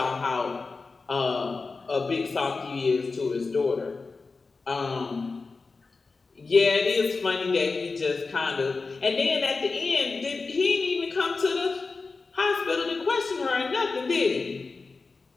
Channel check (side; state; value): right; quieter; 4.1 dB